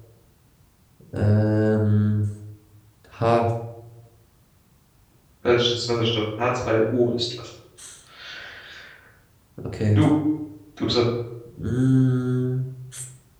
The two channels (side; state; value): both; identical; correlation 1.00